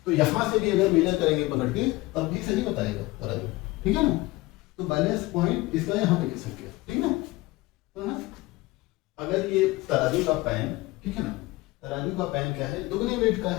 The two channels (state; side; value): quieter; right; 20.5 dB